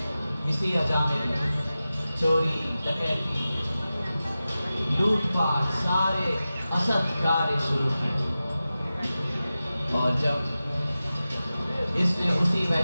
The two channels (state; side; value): inverted; both; correlation -0.94